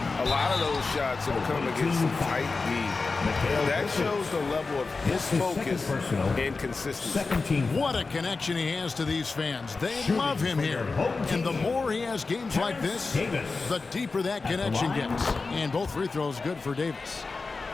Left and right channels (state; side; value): quieter; right; 4.1 dB